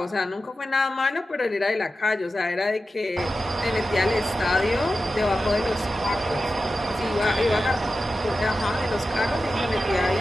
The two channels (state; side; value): normal; both; correlation 0.92